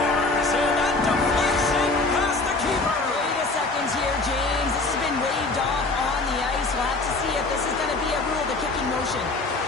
And that deflection past the keeper. Wait a second here, James. This has been waved off on the ice. We'll have to see if this is going to be a rule, the kicking motion.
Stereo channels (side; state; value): right; quieter; 3.4 dB